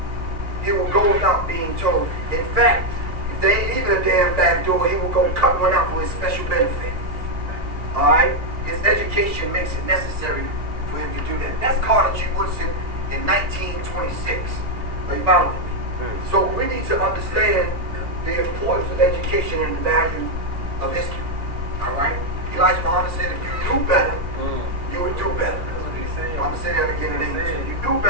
He will go without being told. In fact, if there ain't even a damn back door, he will go cut one out for his special benefit. All right? His education makes it necessary for him to do that. That's Carter G. Woodson in 1926. Are you following me? So we need to understand the importance of education and the value of history. All right? Elijah Muhammad said, if you do better, you would do better. I'm going to say that again in English. If you do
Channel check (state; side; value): late; left; 2.2 ms